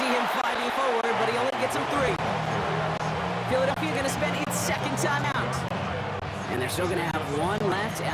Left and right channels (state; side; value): identical; both; correlation 1.00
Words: him fighting forward, but he only gets him 3. Philadelphia going to spend its second timeout. And they're still going to have 1 left